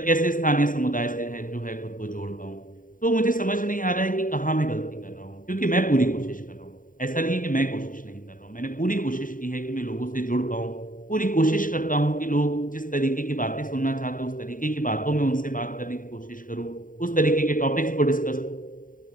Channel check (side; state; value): right; late; 0.39 ms